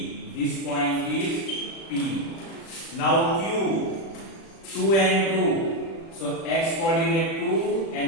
This point is P. Now Q. 2 and 2. So x coordinate 2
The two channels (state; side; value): late; right; 36 ms